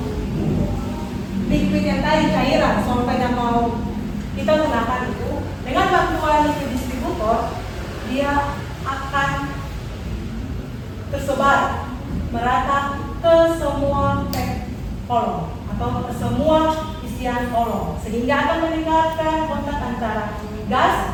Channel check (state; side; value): identical; both; correlation 1.00